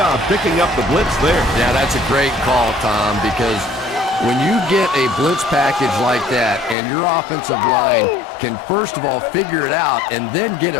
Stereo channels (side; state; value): right; drops out; at 6.8 s